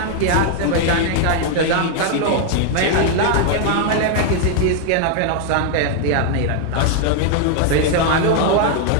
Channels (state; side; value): different; both; correlation 0.00